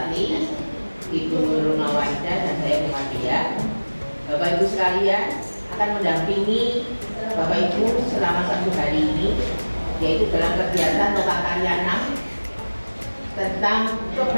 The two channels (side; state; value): both; inverted; correlation -1.00